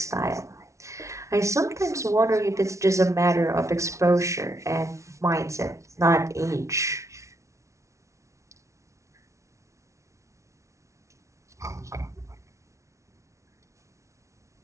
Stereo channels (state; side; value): late; left; 0.14 ms